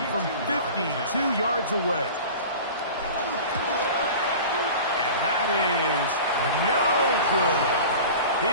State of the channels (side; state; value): both; inverted; correlation -0.37